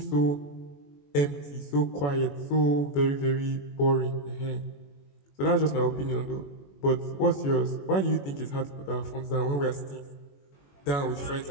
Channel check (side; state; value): right; late; 21 ms